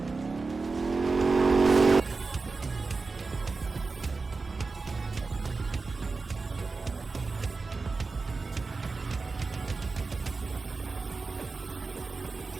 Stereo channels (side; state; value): left; quieter; 4.1 dB